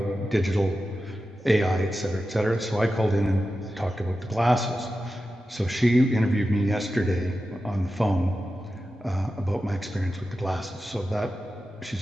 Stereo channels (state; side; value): normal; both; correlation 0.92